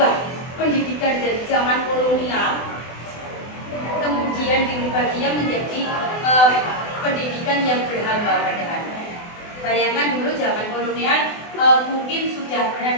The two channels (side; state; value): right; late; 24 ms